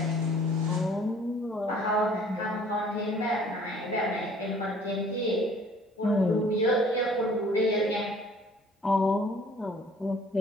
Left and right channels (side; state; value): both; normal; correlation 0.54